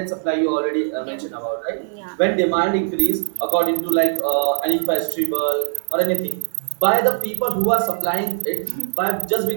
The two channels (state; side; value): silent; left; 62 dB below the other